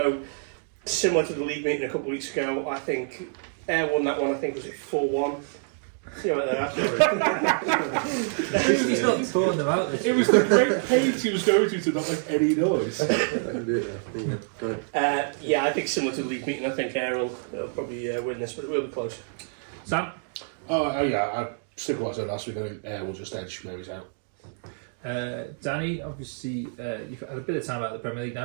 similar to the league meeting a couple of weeks ago, I think Ayr won that one. I think was it 4-1. See what they're He's not throwing them out. It was the great pace he was going to not make any noise. Yeah, I think similar to the league meeting, I think Ayr will probably win this, but it will be close. Sam? Oh yeah, I stick with what I said last week. I think Ayr will just edge Mary's out. Danny, obviously, you've had a bit of time out of the Premier League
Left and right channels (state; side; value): silent; left; digital silence